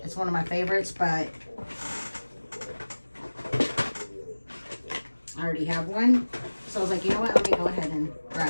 It's one of my favorites, but I already have one. So I was like, you know what, let me go ahead and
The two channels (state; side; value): inverted; both; correlation -1.00